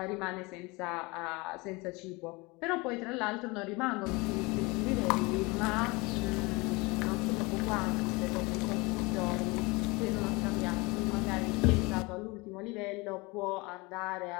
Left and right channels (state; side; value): quieter; right; 25.4 dB